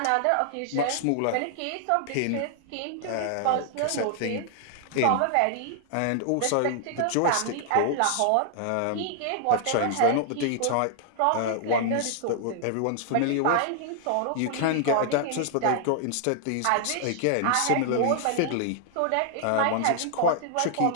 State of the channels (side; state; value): both; different; correlation 0.00